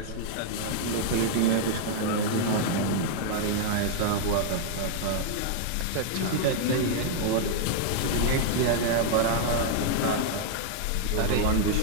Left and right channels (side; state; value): both; different; correlation -0.01